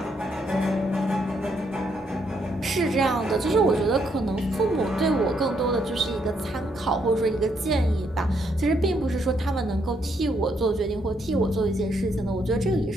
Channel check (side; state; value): both; normal; correlation 0.74